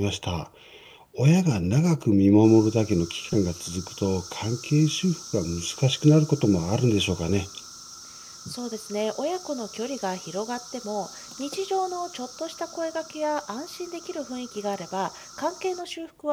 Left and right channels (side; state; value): both; identical; correlation 1.00